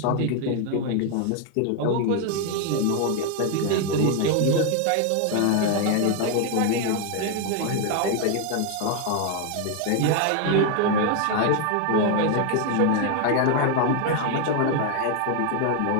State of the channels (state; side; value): different; both; correlation 0.01